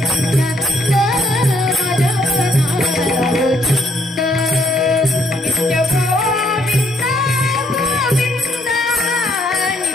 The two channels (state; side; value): normal; both; correlation 0.70